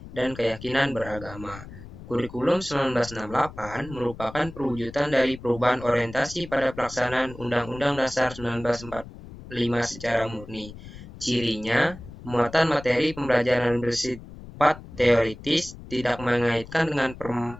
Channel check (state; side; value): noise; left; rumble, 15 dB below the sound